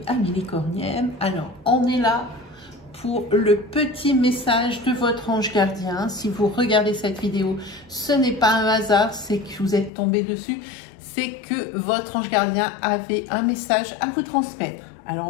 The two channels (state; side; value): drops out; right; at 9.9 s